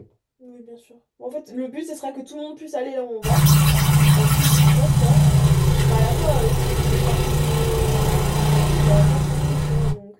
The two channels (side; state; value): both; identical; correlation 1.00